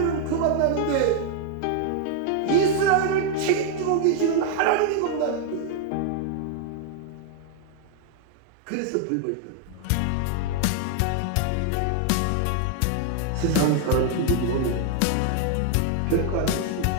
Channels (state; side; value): different; both; correlation 0.00